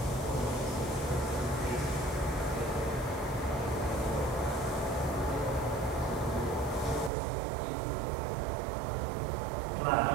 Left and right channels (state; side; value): drops out; left; at 7.1 s